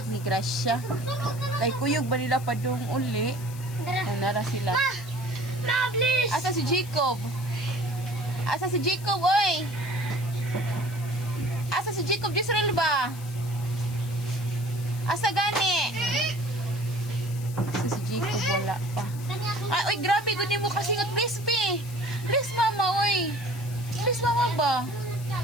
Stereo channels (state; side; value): noise; left; hiss, 17 dB below the sound